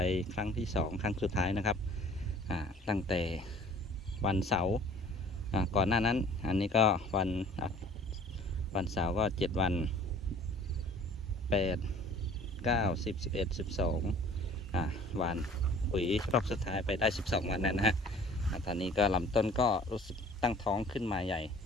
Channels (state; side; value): normal; both; correlation 0.50